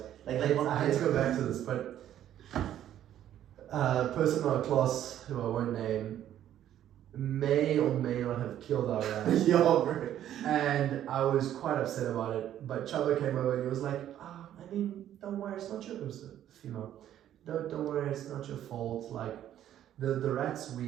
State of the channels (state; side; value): quieter; left; 11.4 dB